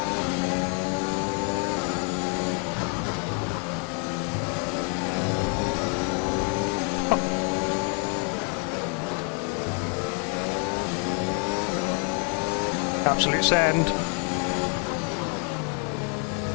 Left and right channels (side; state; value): right; quieter; 38.7 dB